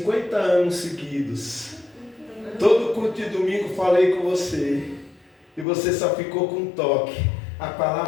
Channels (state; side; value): drops out; right; at 5.7 s